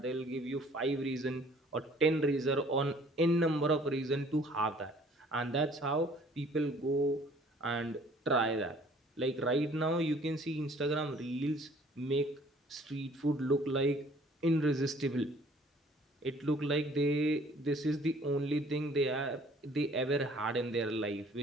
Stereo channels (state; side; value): normal; both; correlation 0.56